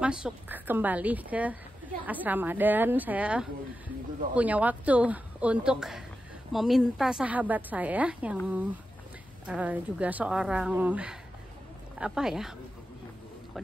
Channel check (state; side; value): normal; both; correlation 0.90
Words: kembali ke asrama. Dan saya punya waktu untuk meminta sahabat saya yang juga seorang kok